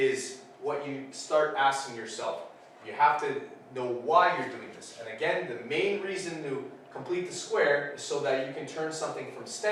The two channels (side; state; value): both; identical; correlation 1.00